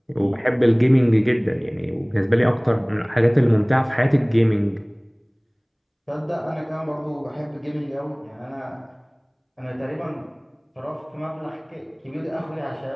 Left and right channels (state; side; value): identical; both; correlation 1.00